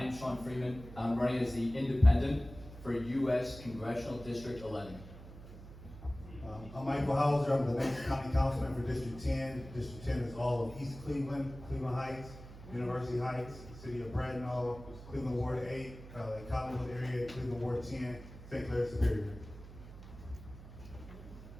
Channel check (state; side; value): noise; right; hum, 15 dB below the sound